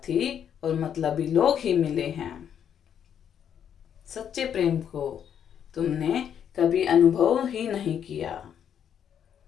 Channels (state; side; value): quieter; right; 8.8 dB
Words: और मतलबी लोग ही मिले हैं। सच्चे प्रेम को तुमने कभी अनुभव ही नहीं किया,